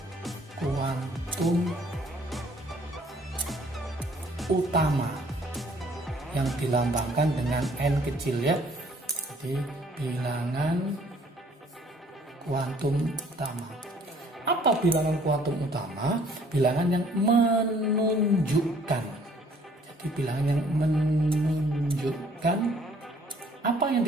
kuantum utama yang dilambangkan dengan n kecil ya. Jadi bilangan kuantum utama. Apa bilangan kuantum utama? Bilangan yang menunjukkan. Jadi bilangan yang menunjukkan, apa yang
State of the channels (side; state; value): both; normal; correlation 0.59